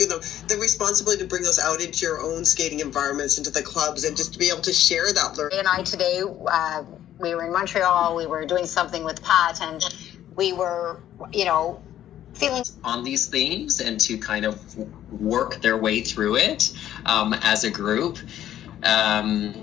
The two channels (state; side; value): quieter; right; 11.7 dB